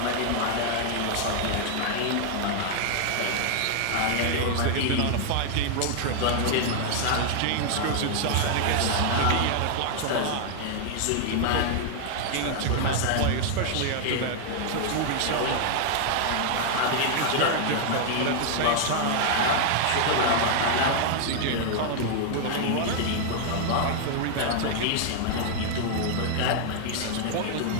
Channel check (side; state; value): both; different; correlation 0.00